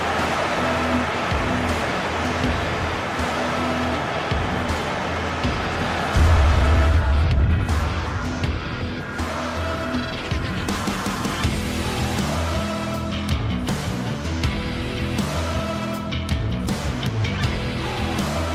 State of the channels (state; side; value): identical; both; correlation 1.00